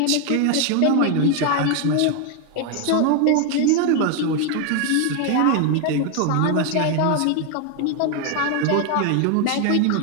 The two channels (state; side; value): different; both; correlation 0.01